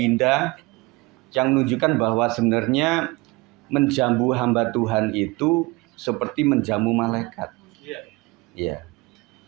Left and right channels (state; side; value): quieter; left; 23.5 dB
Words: yang menunjukkan bahwa sebenarnya menjamu hamba Tuhan itu seperti menjamu malaikat. Ya.